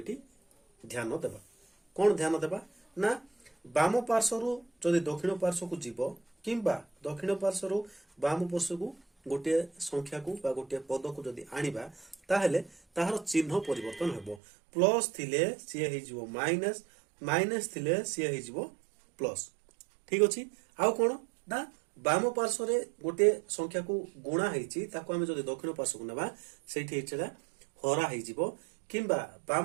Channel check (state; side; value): drops out; left; at 14.4 s